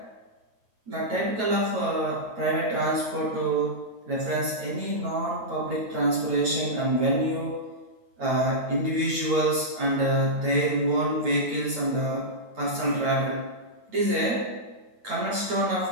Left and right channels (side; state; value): left; late; 8.9 ms